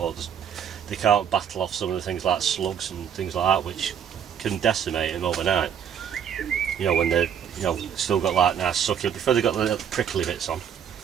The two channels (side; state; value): left; quieter; 8.5 dB